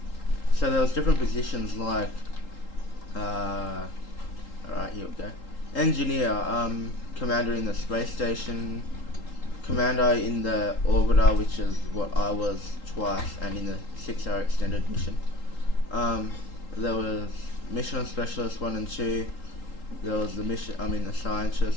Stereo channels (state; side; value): late; right; 3.8 ms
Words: So there was different positions like, alright, here we go. Engineer, commander in the space station, commander in the orbiter, which is what I was twice, and in the 6-hour extended mission. There was mission specialist 1 and 2. There was the the